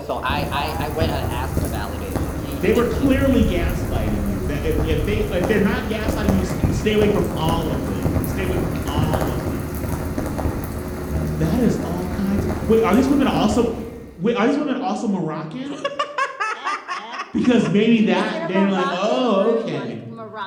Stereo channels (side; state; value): both; identical; correlation 1.00